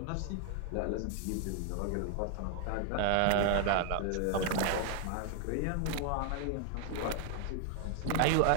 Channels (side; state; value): both; different; correlation 0.00